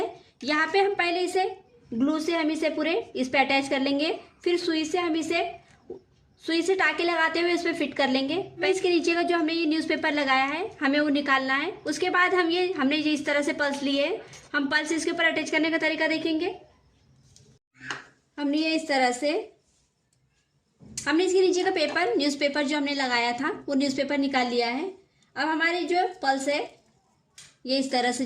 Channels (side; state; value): both; identical; correlation 1.00